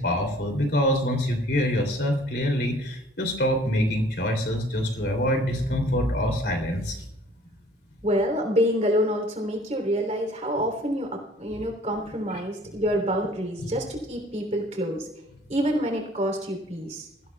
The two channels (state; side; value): normal; both; correlation 0.54